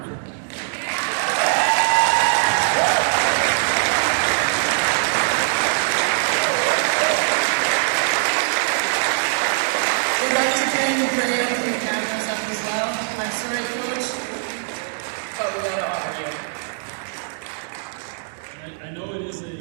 We'd like to thank you for getting the cameras up as well. I'm sorry, Coach, but we gotta honor you. I know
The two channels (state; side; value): silent; left; digital silence